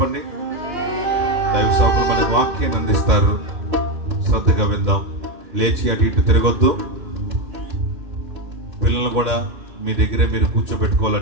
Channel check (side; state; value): left; late; 2.1 ms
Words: దైవ సేవకులు మన వాక్యాన్ని అందిస్తారు. శ్రద్ధగా విందాం. లేచి అటు ఇటు తిరగొద్దు. పిల్లలు కూడా మీ దగ్గరే మీరు